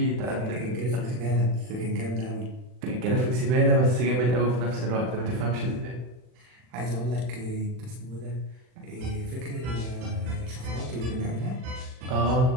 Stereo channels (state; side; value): late; left; 40 ms